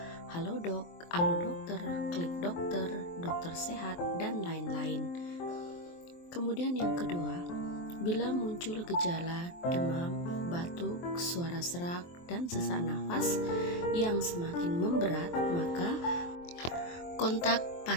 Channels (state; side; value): late; right; 23 ms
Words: Halodoc, Alodokter, Klik Dokter, Dokter Sehat, dan lain-lain. Kemudian yang kedua, bila muncul gejala demam, batuk, suara serak, dan sesak nafas yang semakin memberat, maka kontak